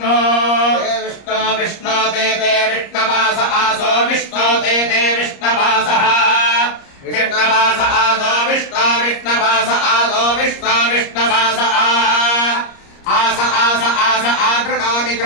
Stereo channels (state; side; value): late; right; 30 ms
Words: विष्णो विष्णो ते विष्णवास आसो विष्णो ते विष्णवासः विष्णवास आसो विष्णो विष्णवास आसो विष्णो विष्णवास आस आस आस आगृणोमि